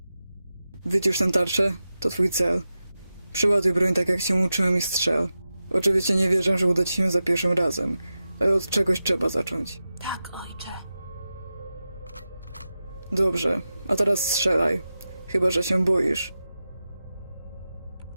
Wycisz tę tarczę, to twój cel. Przyładuj broń tak, jak cię uczyłem i strzel. Oczywiście nie wierzę, że uda ci się za pierwszym razem, ale od czegoś trzeba zacząć. Tak, ojcze. Dobrze, a teraz strzelaj. Chyba że się boisz.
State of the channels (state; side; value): inverted; both; correlation -0.92